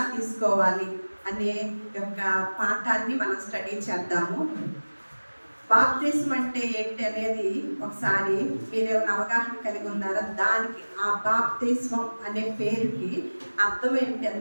తీసుకోవాలి అనే యొక్క పాఠాన్ని మనం స్టడీ చేద్దాము. బాప్తిస్మం అంటే ఏంటి అనేది ఒకసారి మీరేమైనా అవగాహన కలిగి ఉన్నారా? దానికి ఆ బాప్తిస్మం అనే పేరుకి అర్థం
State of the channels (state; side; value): inverted; both; correlation -1.00